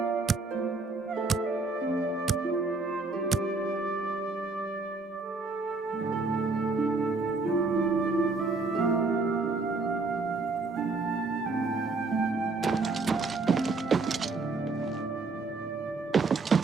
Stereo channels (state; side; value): quieter; left; 3.7 dB